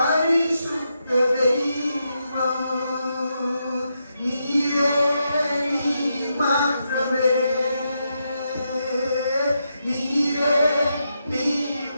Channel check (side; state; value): both; inverted; correlation -0.83